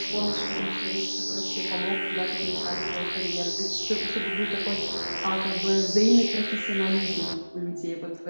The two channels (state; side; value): inverted; both; correlation -1.00